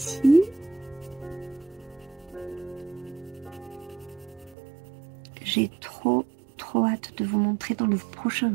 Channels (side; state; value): left; drops out; at 4.5 s